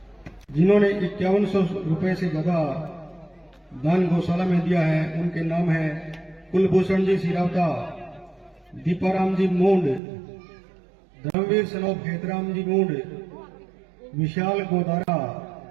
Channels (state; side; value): drops out; left; at 10.0 s